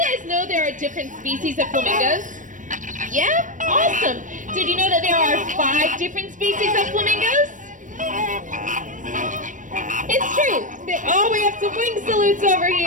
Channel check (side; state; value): left; late; 0.37 ms